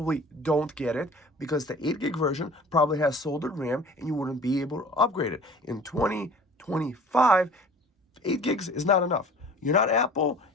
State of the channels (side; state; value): both; normal; correlation 0.45